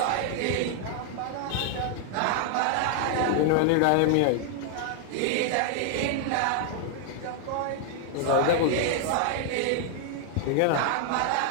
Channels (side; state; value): both; different; correlation 0.00